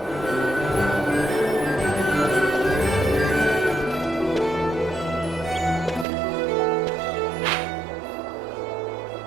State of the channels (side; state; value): left; drops out; at 6.1 s